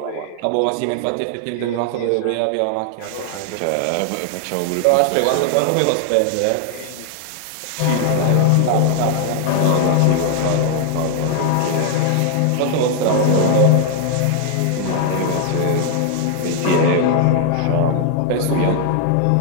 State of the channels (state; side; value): different; both; correlation 0.00